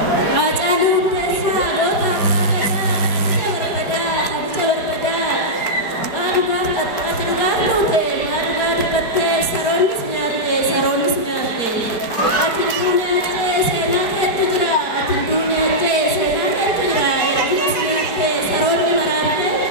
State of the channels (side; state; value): right; late; 4.4 ms